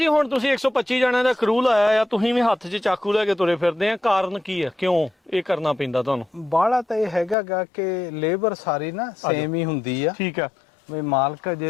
ਹੁਣ ਤੁਸੀਂ 125 ਜਣਿਆਂ ਦਾ ਕਰੂ ਲਾਇਆ ਆ, ਤੁਸੀਂ ਵੀ ਹੱਥ 'ਚ ਚਾਕੂ ਲੈ ਕੇ ਤੁਰੇ ਫਿਰਦੇ ਆ, ਕਾਰਨ ਕੀ ਆ, ਕਿਉਂ ਇਹ ਕਰਨਾ ਪੈਂਦਾ ਤੁਹਾਨੂੰ? ਬਾਹਲਾ ਤਾਂ ਇਹ ਹੈਗਾ ਕਿ ਲੇਬਰ ਸਾਰੀ ਨਾ ਸੇਮ ਹੀ ਹੁੰਦੀ ਆ। ਠੀਕ ਆ ਵੀ ਮਾਲਕ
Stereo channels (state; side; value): drops out; right; at 7.4 s